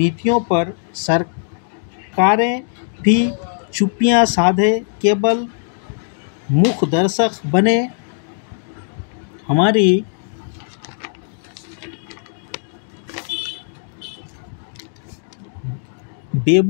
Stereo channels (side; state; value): right; silent; digital silence